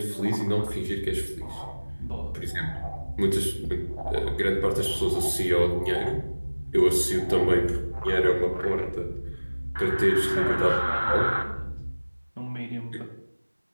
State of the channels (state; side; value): inverted; both; correlation -1.00